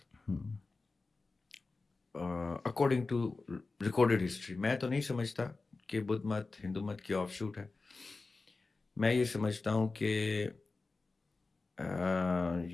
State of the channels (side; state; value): right; quieter; 3.8 dB